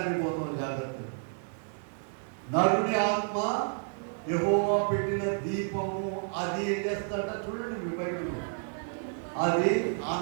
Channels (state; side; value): silent; left; 57 dB below the other